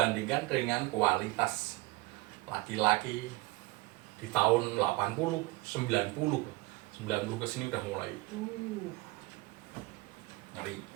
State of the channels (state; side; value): quieter; left; 21.5 dB